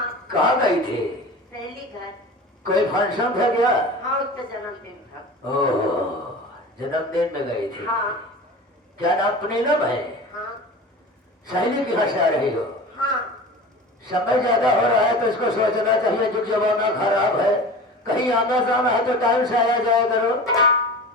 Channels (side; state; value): both; normal; correlation 0.35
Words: कहाँ गई थी? सहेली घर। कोई फंक्शन था क्या? हाँ, उसका जन्मदिन था। ओह, जन्मदिन में गई थी। हाँ। क्या नाम नीलम है? हाँ। सहेली कहाँ से आ रही हो? हाँ। समय ज्यादा हो रहा है तो इसको सोचना चाहिए, जो जमाना खराब है, कहीं आना जाना है तो टाइम से आया जाया करो।